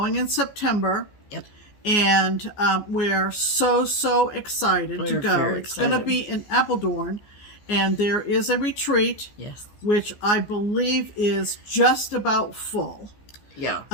in September. Yep. And we're so excited to go. It's going to be in Apeldoorn. And there is a retreat, which I believe is just about full. Yeah.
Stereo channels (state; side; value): late; right; 14 ms